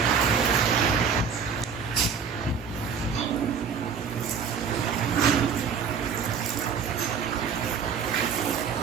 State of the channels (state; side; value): quieter; left; 6.4 dB